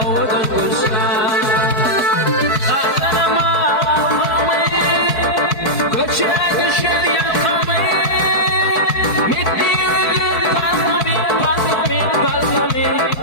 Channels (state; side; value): late; right; 4.5 ms